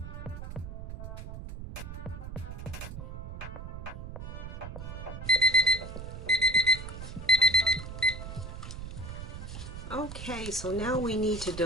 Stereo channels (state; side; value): noise; right; rumble, 9 dB below the sound